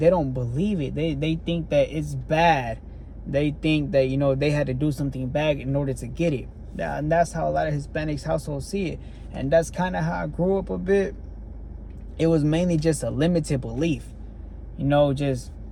don't believe it. They think that it's bad. They think that, you know, they had to do something bad in order to get it. And that's how a lot of Hispanics households see it. And that's kind of how I grew up a bit. It was mainly just a limited belief. You know, just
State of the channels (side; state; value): both; identical; correlation 1.00